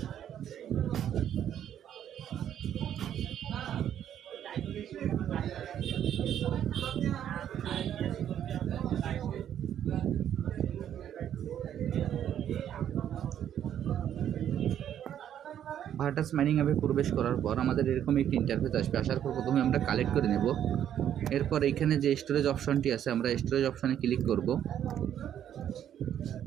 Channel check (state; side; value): quieter; left; 10.1 dB